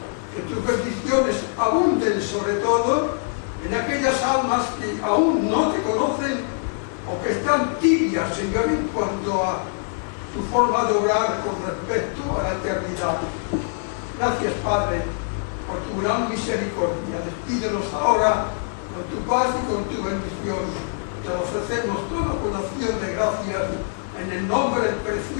que tus bendiciones abunden sobre todo en aquellas almas que aún no te conocen o que están tibias, Señor, en cuanto a su forma de obrar con respecto a la eternidad. Gracias, Padre, por tu gran misericordia. Despídenos ahora con tu paz y con tu bendición. Te lo ofrecemos todo con acción de gracias en el nombre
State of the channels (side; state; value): right; silent; digital silence